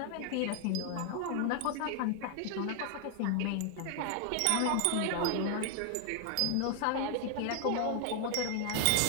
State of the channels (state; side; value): different; both; correlation 0.00